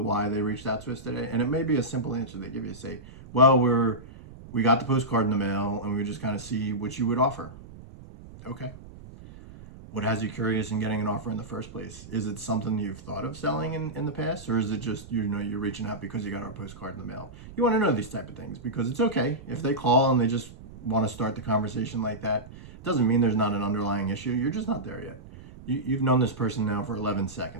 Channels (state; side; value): noise; right; rumble, 17 dB below the sound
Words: why they reached out to us today, and it may be a simple answer they give you, say, well, we got the postcard in the mail and we just kind of see what you would offer. Okay. What has you curious in getting an offer in the first place? Is it something you've thought of selling in the past, or is it just, you know, you're reaching out because you got our postcard in the mail? You want to know these type of things because it's okay if they call and they just want to start the conversation like that. It doesn't mean there's not an underlying issue. You're just not there yet. You've known this person now for 11